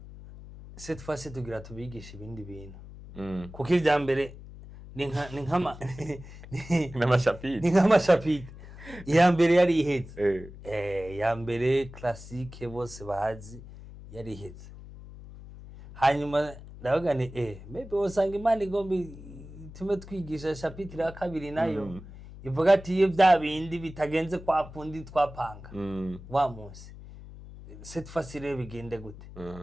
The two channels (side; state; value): left; noise; hum, 16 dB below the sound